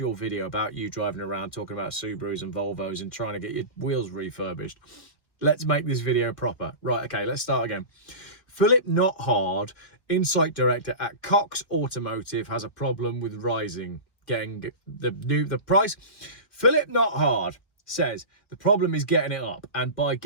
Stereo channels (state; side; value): late; right; 1.7 ms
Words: video about you driving around talking about Subarus and Volvos and trying to get your wheels refurbished. Let's make this video proper. Right, okay, let's start again. Philip Nothard, Insight Director at Cox Automotive, has a problem with getting the price. Philip Nothard says the problem is getting it up, and by